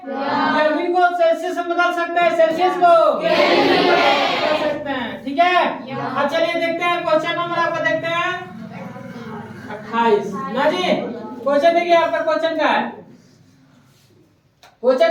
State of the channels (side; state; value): both; identical; correlation 1.00